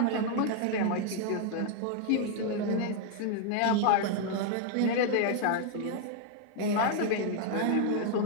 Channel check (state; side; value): different; both; correlation 0.00